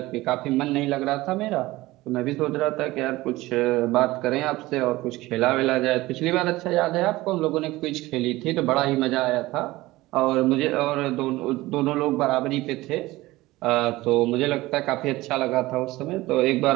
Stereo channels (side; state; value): left; quieter; 18.7 dB